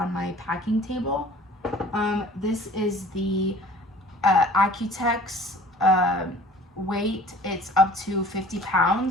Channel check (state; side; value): normal; both; correlation 0.48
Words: my packing table. This is the Accutex weight. It's up to 50